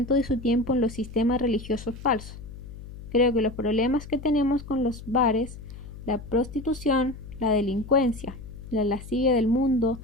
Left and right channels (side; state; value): left; noise; hum, 13 dB below the sound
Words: de su tiempo en los sistemas religiosos falsos. Creo que los problemas que tenemos con los bares, la prostitución, la delincuencia, la lascivia del mundo